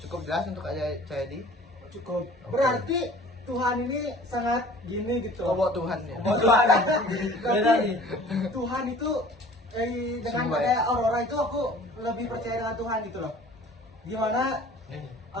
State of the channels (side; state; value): both; normal; correlation 0.48